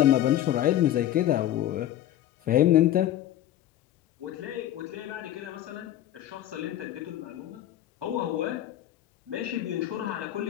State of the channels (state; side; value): quieter; right; 12.5 dB